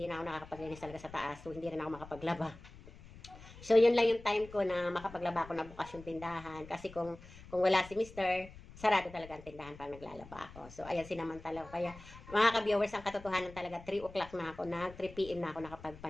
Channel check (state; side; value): noise; left; rumble, 18 dB below the sound